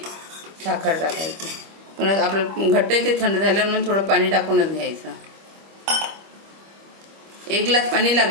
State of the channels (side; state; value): left; late; 25 ms